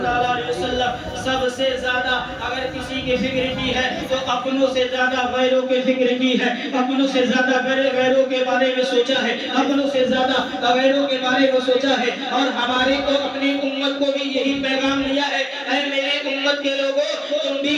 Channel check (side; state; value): both; identical; correlation 1.00